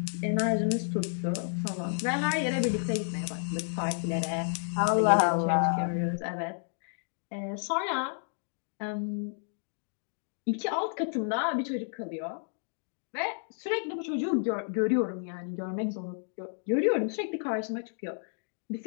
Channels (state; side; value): silent; right; digital silence